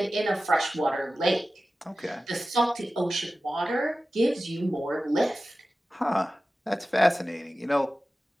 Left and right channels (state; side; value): normal; both; correlation 0.95